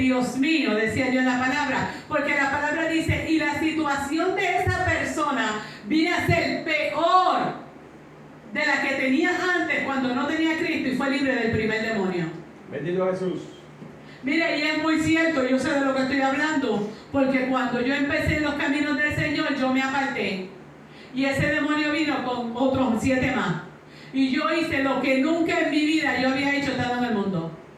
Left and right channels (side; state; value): both; identical; correlation 1.00